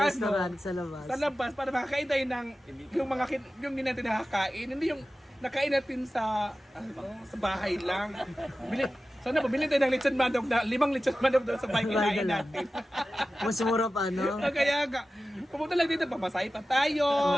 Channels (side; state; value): both; normal; correlation 0.95